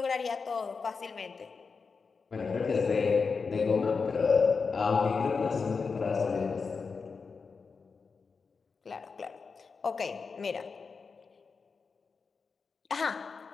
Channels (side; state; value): right; quieter; 5.0 dB